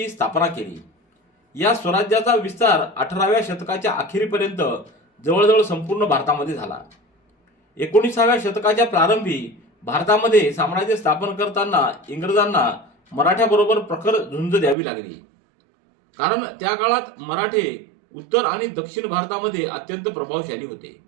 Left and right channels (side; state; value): left; drops out; at 14.8 s